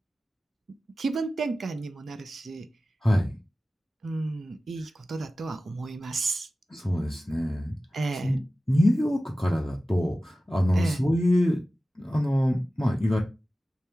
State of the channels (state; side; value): normal; both; correlation 0.96